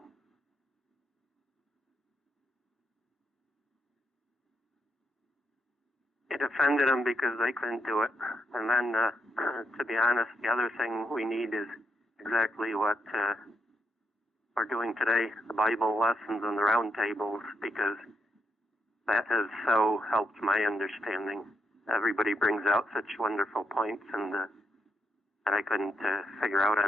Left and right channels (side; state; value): both; normal; correlation 0.79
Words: It offended them because they couldn't do it. And then, to be honest, the other thing we need is exactly what we're doing today, the Bible lessons and the round tables, because that has so helped my understanding. Everybody brings out such wonderful points and that I couldn't figure out